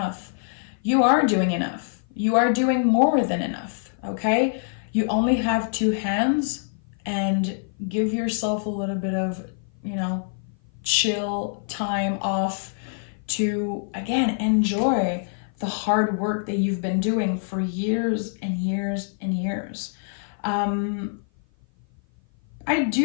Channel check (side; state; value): right; silent; 55 dB below the other